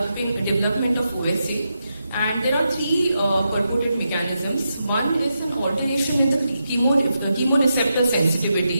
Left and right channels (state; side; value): inverted; both; correlation -0.86